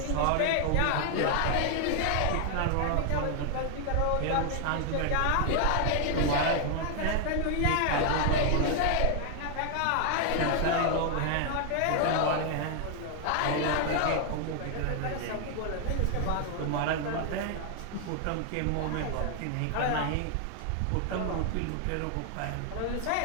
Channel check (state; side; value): different; both; correlation 0.00